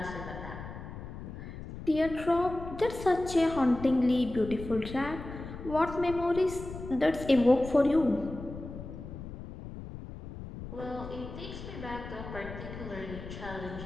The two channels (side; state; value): left; noise; rumble, 11 dB below the sound